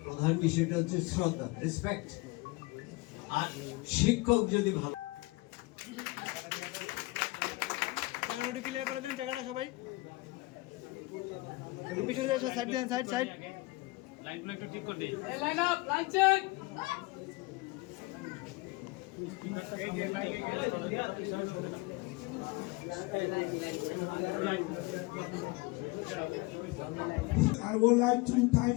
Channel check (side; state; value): right; quieter; 23.0 dB